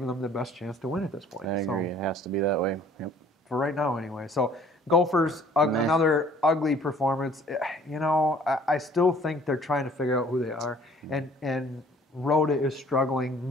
them the best chance to win at this point. I agree. It has to be that way. Yep. For right now, anyway. So Gophers, another ugly performance. I still think they're trying to figure out who they are, and Rhoda is struggling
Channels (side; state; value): both; normal; correlation 0.55